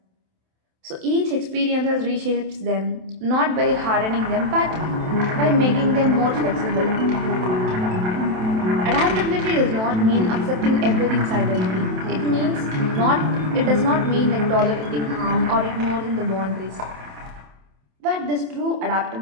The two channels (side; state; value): left; late; 27 ms